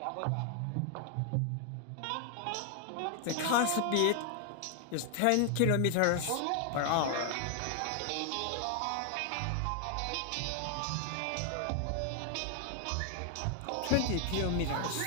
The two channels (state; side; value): different; both; correlation 0.00